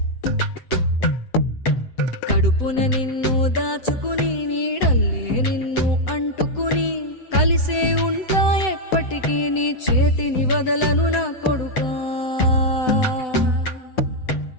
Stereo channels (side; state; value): right; late; 7.9 ms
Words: కడుపున నిన్ను దాచుకుని నీడల్లే నిన్ను అంటుకుని కలిసే ఉంటా ఎప్పటికీ నీ చేతిని వదలను నా కొడుకా.